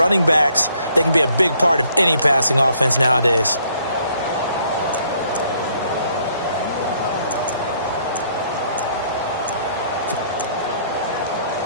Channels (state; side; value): inverted; both; correlation -0.66